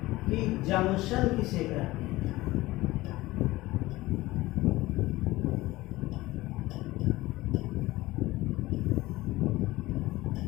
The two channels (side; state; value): right; quieter; 18.7 dB